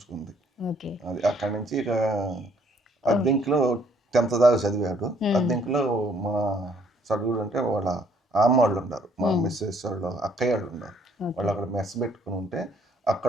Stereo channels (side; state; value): both; normal; correlation 0.64